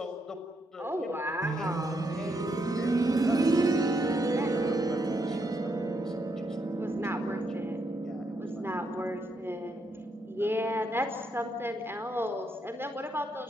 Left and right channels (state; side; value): normal; both; correlation 0.78